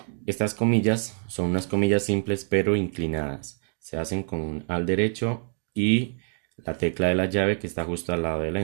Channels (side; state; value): left; silent; 55 dB below the other